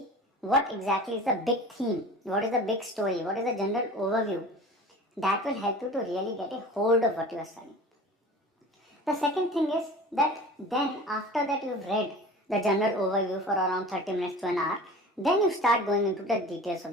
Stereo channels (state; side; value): normal; both; correlation 0.39